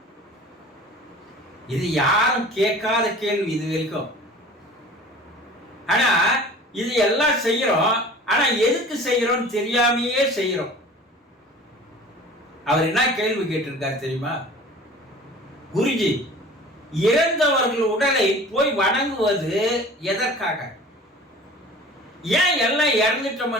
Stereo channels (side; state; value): both; normal; correlation 0.43